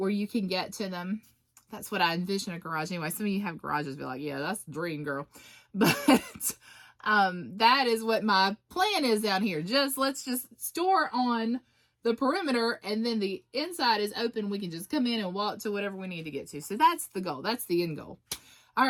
you can get to them. That's what I envision a garage. Anyway, some of you have garages, be like, yeah, that's the dream, girl. But that is what my plan is down here. Let's just store on the perimeter, and then the inside is open. We can just come in and walk to whatever we need to get to. So that's the goal. That's the end goal. All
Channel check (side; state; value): both; identical; correlation 1.00